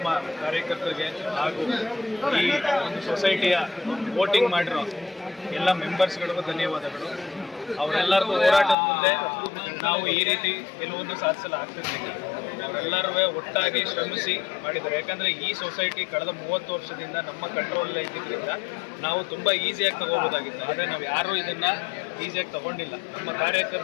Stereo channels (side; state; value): right; drops out; at 8.8 s